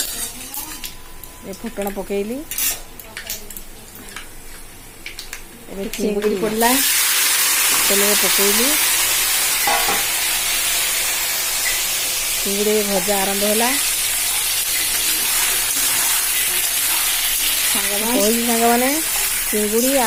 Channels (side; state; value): both; identical; correlation 1.00